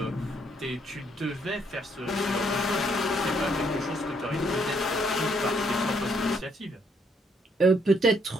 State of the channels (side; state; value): both; normal; correlation 0.71